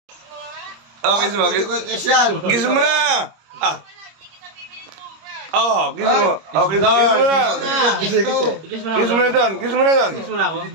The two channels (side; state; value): left; late; 26 ms